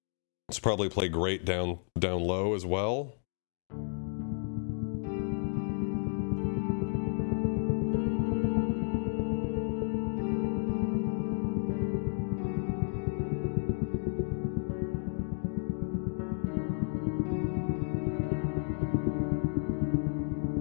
It's probably play great down low as well.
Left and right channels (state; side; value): silent; right; 56 dB below the other